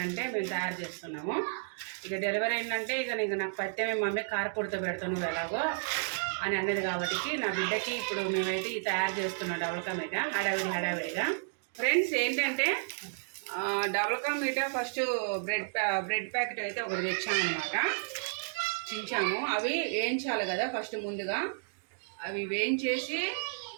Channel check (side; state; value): left; silent; digital silence